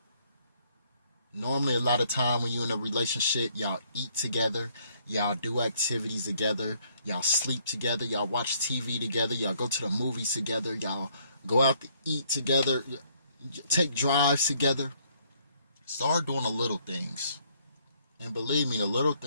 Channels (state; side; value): inverted; both; correlation -0.67